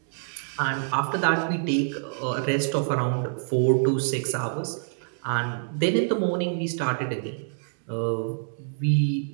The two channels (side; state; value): left; silent; digital silence